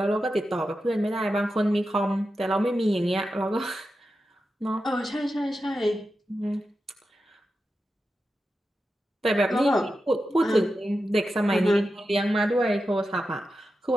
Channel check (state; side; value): normal; both; correlation 0.90